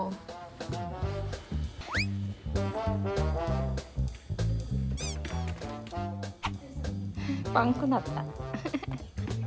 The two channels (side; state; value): both; identical; correlation 1.00